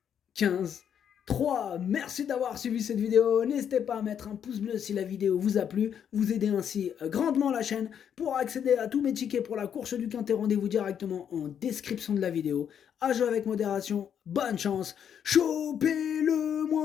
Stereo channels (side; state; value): right; quieter; 8.6 dB